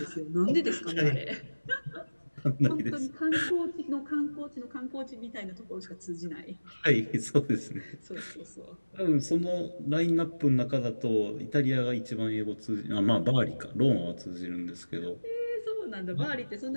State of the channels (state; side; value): inverted; both; correlation -1.00